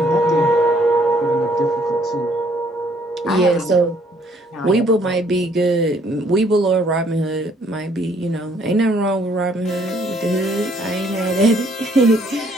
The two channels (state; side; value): normal; both; correlation 0.65